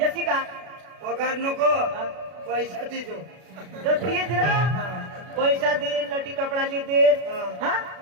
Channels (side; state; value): left; late; 32 ms